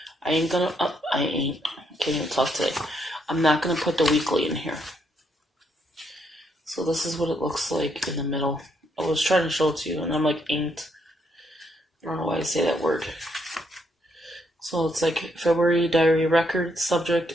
Can't even talk today. I'm not gonna put the weekly in here. So this is what it looks like in the middle. I was trying to show it to you, and I'm like inked. I don't know why I say that word. So it's like February diary record, subject,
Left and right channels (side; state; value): both; normal; correlation 0.75